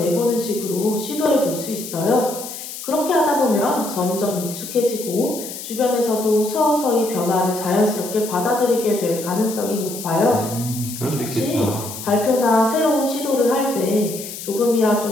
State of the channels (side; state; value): left; noise; hiss, 10 dB below the sound